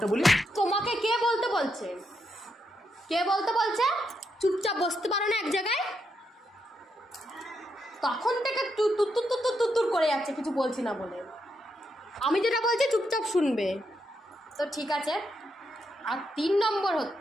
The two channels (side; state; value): both; normal; correlation 0.81